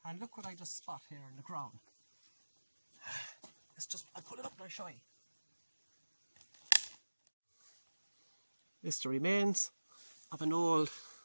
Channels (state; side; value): inverted; both; correlation -1.00